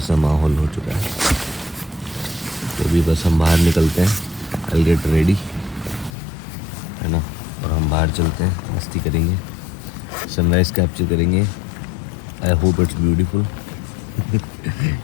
माहौल हो चुका है। तो अभी बस हम बाहर निकलते हैं, आई गेट रेडी, है ना, और हम बाहर चलते हैं, मस्ती करेंगे, सनराइज़ कैप्चर करेंगे। I hope it's beautiful.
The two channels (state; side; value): drops out; right; at 6.1 s